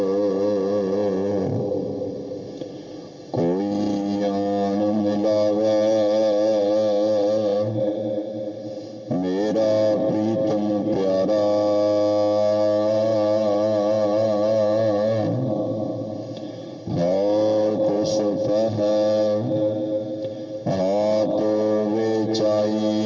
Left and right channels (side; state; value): both; identical; correlation 1.00